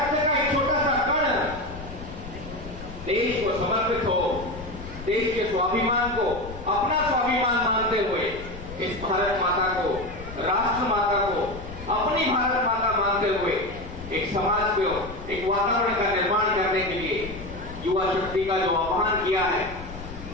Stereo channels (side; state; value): left; noise; rumble, 13 dB below the sound